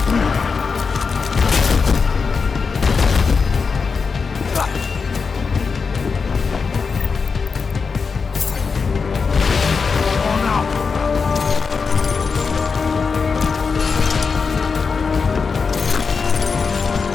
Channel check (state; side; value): quieter; right; 5.1 dB